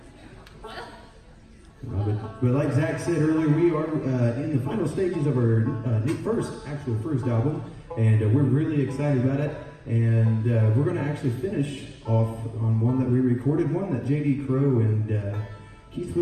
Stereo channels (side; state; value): both; identical; correlation 1.00